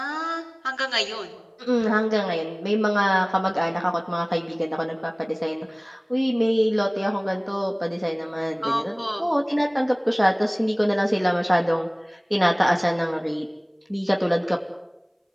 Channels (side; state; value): both; identical; correlation 1.00